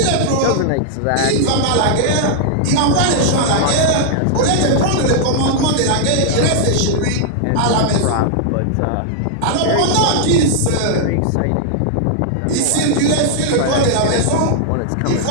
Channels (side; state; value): both; different; correlation -0.01